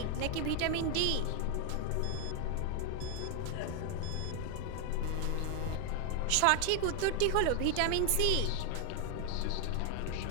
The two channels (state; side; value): different; both; correlation 0.00